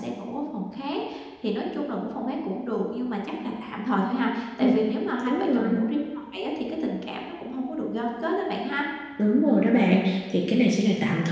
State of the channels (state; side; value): identical; both; correlation 1.00